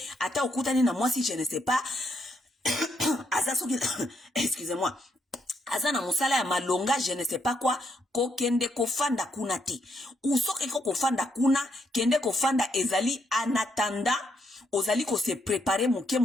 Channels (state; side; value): normal; both; correlation 0.76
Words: ata okutani na mwasi je ne sais pas. Asa soki excusez-moi. Asa na musala ya malonga je ne sais pas quoi ko kende ko fanda kuna te. Usoke ko fanda kuna kende ko fanda ezali en attendant ozali ko se préparer